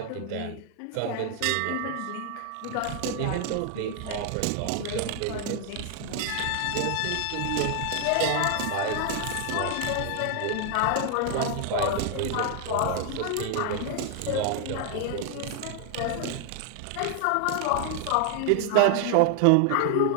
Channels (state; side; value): different; both; correlation 0.00